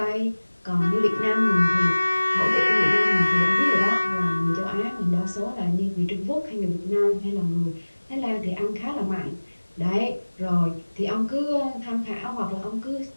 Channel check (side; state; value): both; inverted; correlation -1.00